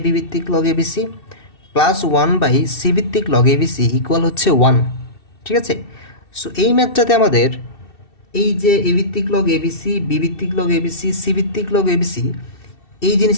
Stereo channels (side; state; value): right; late; 2.7 ms